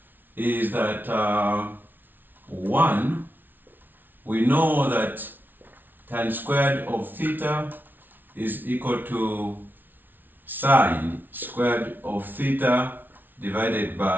is that 1, we know that tan squared of theta is equal to sine squared of theta divided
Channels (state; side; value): late; left; 0.090 ms